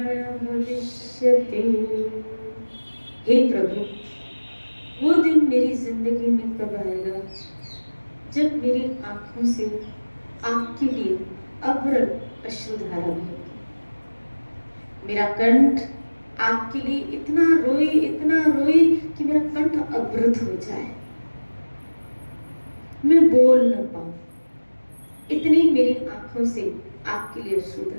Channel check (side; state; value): both; inverted; correlation -1.00